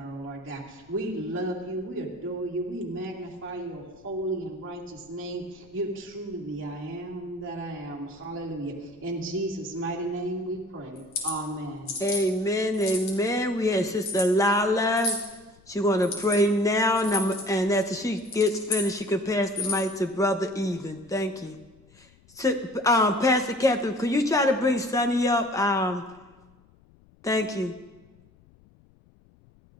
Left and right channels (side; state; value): left; noise; rumble, 29 dB below the sound